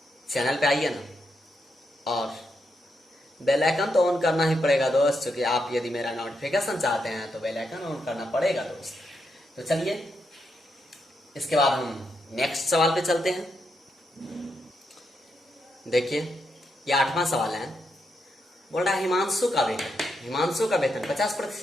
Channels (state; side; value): normal; both; correlation 0.82